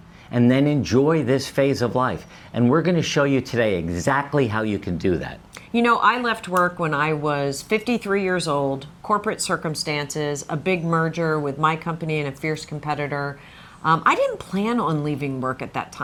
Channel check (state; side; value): identical; both; correlation 1.00